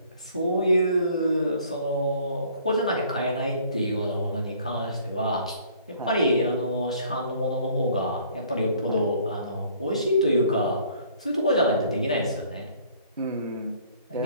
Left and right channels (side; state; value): both; inverted; correlation -0.57